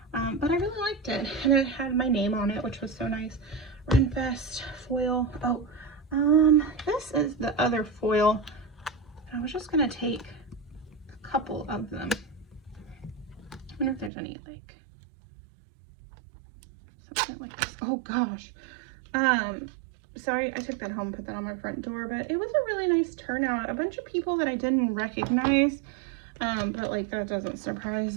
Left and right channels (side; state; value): left; drops out; at 14.1 s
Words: but I really liked it, and it had my name on it, which was so nice. Renfest foil. Oh, this is the other foil. I was just gonna take a couple of them. I wonder if there's any, like, something like this. Oh gosh. Sorry, I took that home, put that on my front door, but it was a really nice turnout. A bunch of people that I didn't recognize, but like, that doesn't